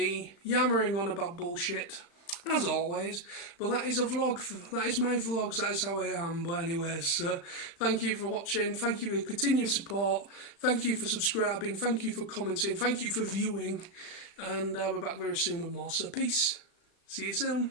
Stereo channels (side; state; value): right; late; 35 ms